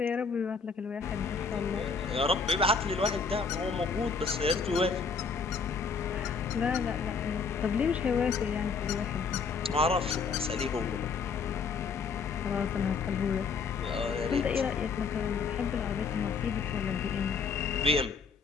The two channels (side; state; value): right; quieter; 5.1 dB